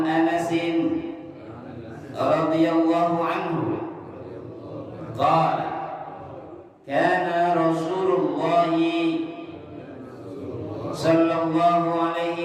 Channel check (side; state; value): both; identical; correlation 1.00